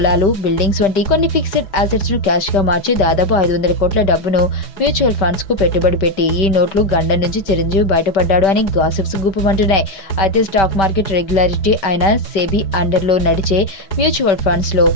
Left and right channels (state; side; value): late; right; 5.2 ms